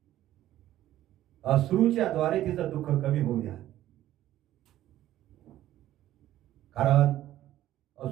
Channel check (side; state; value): left; quieter; 13.6 dB